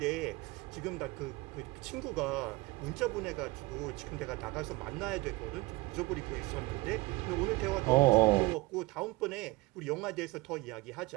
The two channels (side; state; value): left; quieter; 22.2 dB